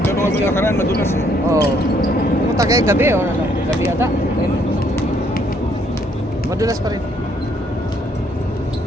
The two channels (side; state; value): both; normal; correlation 0.68